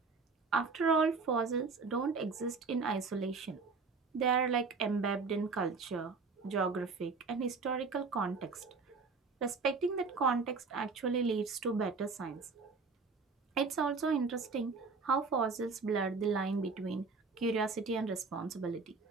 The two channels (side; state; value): left; quieter; 4.5 dB